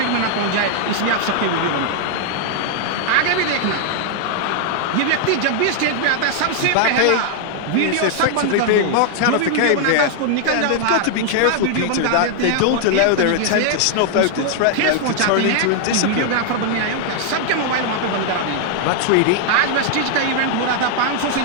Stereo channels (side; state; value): both; different; correlation 0.00